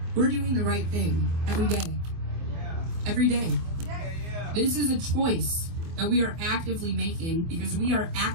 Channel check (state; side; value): late; left; 24 ms